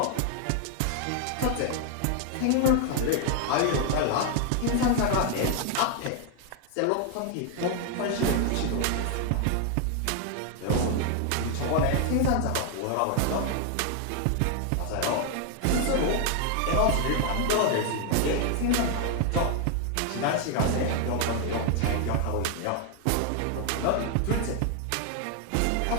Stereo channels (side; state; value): both; different; correlation 0.01